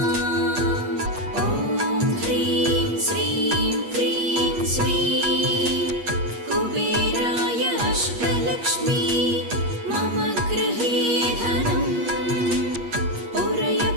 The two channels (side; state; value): left; late; 8.4 ms